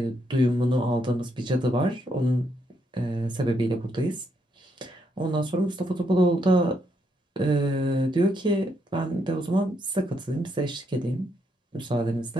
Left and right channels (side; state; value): both; normal; correlation 0.76